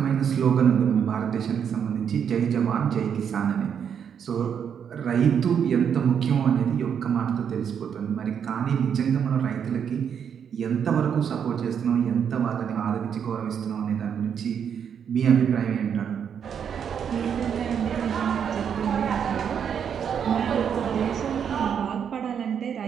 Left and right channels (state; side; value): quieter; left; 7.8 dB